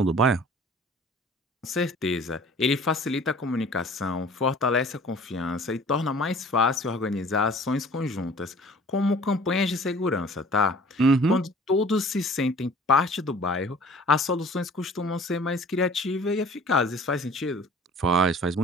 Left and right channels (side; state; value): both; normal; correlation 0.48